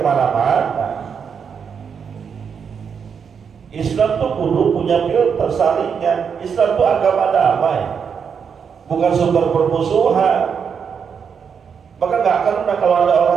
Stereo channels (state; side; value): quieter; left; 6.7 dB